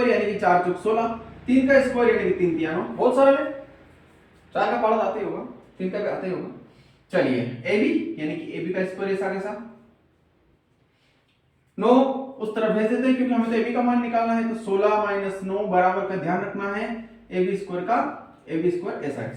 यानी कि 4 × 16, 3 का स्क्वायर यानी कि 3 × 3, बहुत सरल है। 4 का पार्ट आते होगा, 3 का भी आते होगा। चलिए AB यानी कि AB का स्क्वायर ऐसा कैसा 9 उस तरफ भेज देते हैं, क्योंकि हमें तो AB का मान निकालना है। तो 16 - 9 बराबर का ध्यान रखना है AB स्क्वायर का, AB स्क्वायर ऐसा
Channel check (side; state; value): both; identical; correlation 1.00